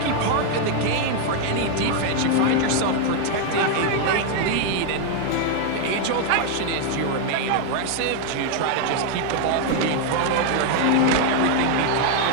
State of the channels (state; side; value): different; both; correlation 0.01